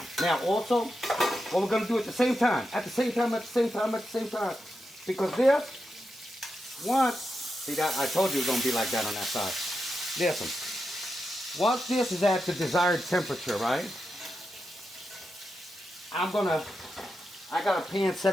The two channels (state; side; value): normal; both; correlation 0.88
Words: Now also, what we're gonna do at the same time, because this, once, see that, I told you it was gonna be like that on that side. Listen, once this is at the desired temperature, right? I got a pan